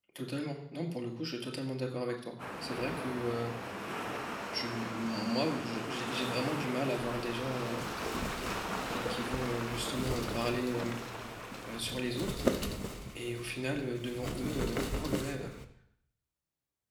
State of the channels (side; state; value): both; identical; correlation 1.00